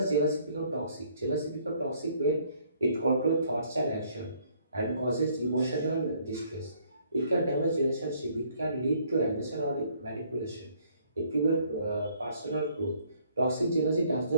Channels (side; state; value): both; inverted; correlation -0.64